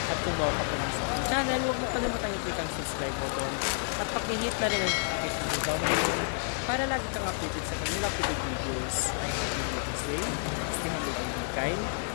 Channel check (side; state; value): right; silent; 58 dB below the other